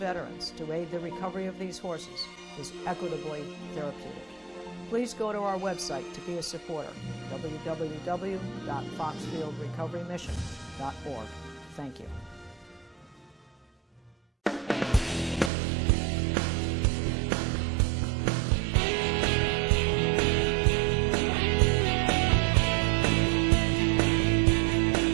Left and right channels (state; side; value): drops out; left; at 15.5 s